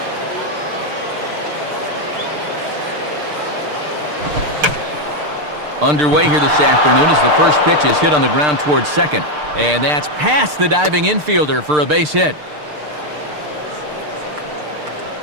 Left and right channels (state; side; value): late; left; 6.7 ms